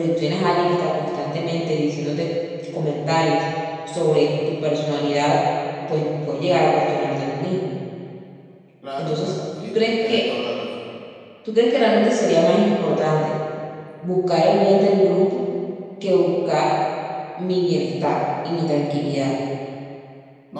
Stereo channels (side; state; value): both; identical; correlation 1.00